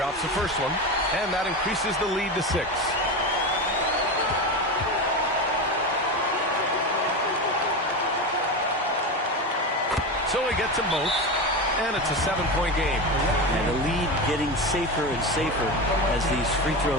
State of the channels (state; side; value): normal; both; correlation 0.20